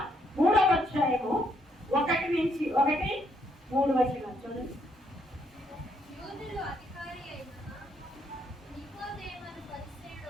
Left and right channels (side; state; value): both; normal; correlation 0.73